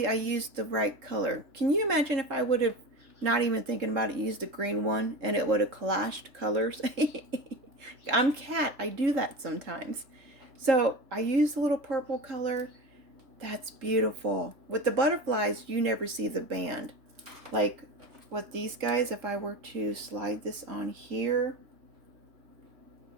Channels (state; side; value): late; left; 3.7 ms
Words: I used the right color. Can you imagine if I would have, not even thinking about it, used the green one and it would have clashed colors? I'm Cat. I do that sometimes. So I used a little purple color. That's beautiful. With the butterflies, you never see the band. Like with these guys, if I were to slide this on here,